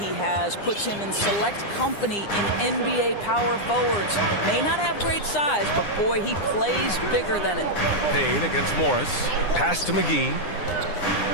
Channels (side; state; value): right; late; 9.8 ms